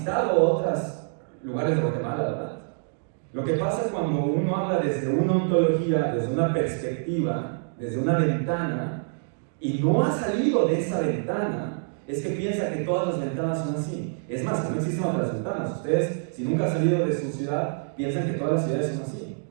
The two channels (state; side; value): silent; left; digital silence